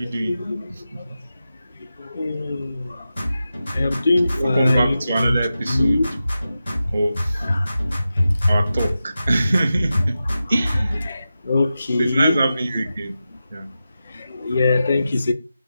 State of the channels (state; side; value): inverted; both; correlation -0.92